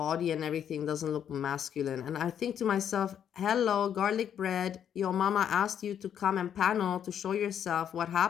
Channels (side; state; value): right; quieter; 9.1 dB